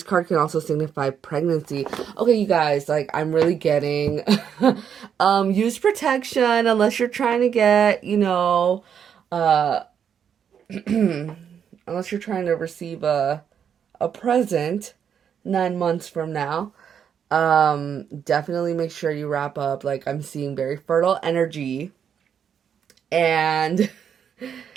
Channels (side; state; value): left; quieter; 8.0 dB